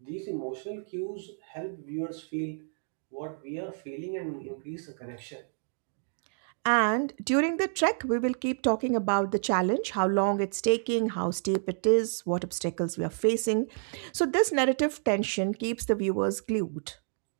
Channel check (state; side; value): silent; left; digital silence